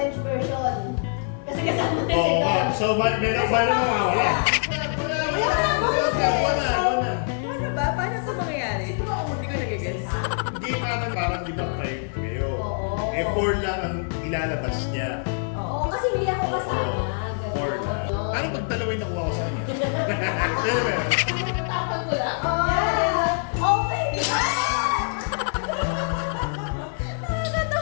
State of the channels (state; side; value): silent; right; digital silence